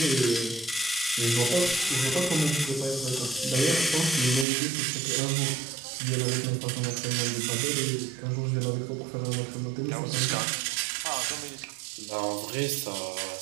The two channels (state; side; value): drops out; left; at 4.5 s